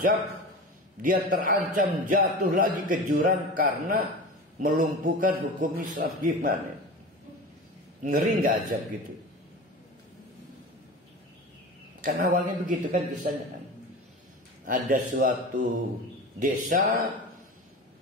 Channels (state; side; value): normal; both; correlation 0.31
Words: dia terancam jatuh lagi ke jurang karena melumpuhkan hukum Islam. Gimana? Ngeri nggak azab gitu? Kan awalnya begitu kan kisahnya kan. Ada suatu desa